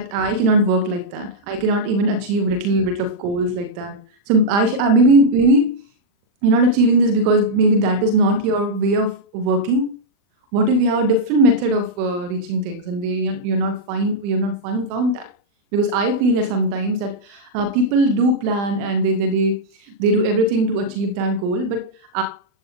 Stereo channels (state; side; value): late; left; 40 ms